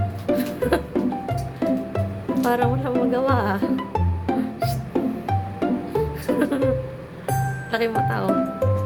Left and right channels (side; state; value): both; identical; correlation 1.00